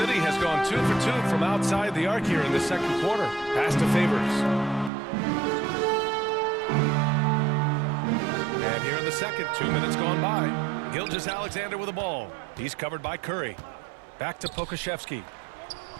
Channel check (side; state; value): left; drops out; at 4.9 s